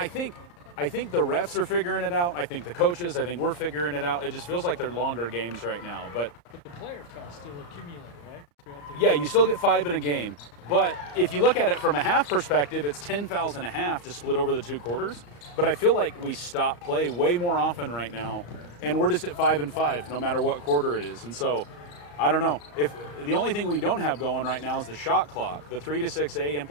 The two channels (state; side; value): late; right; 34 ms